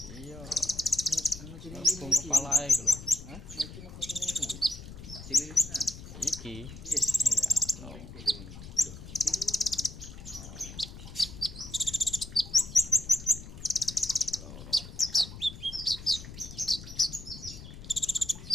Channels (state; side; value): noise; left; rumble, 13 dB below the sound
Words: Iya. Anu cililin Bung kepalae iki lho. Hah? Iki mah kosone iku. Cililinan. Iki. Yes. Iya. Lho, cililinan.